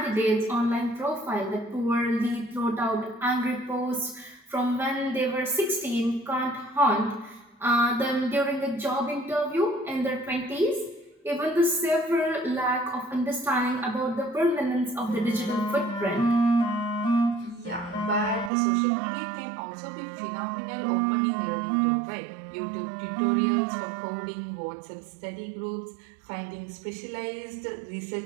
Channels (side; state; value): left; drops out; at 18.5 s